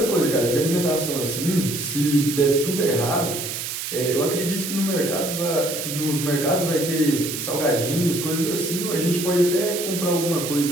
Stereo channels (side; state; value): right; noise; hiss, 5 dB below the sound